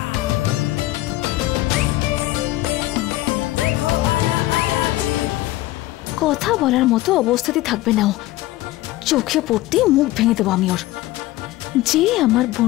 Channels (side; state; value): right; quieter; 17.0 dB